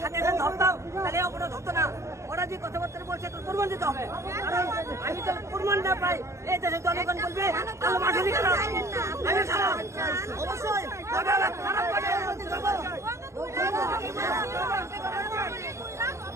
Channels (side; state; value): left; late; 0.14 ms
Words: সাথে সাথে ধরতাম, তাহলে ওরা ধরতো না। ওরা যে কথাবার্তা বলছে তো প্রমাণ দিতে হবে। কারণ আমি তো প্রমাণ না পাই, এই দেশের জনগণ বলবে আমি খারাপ। অবশ্যই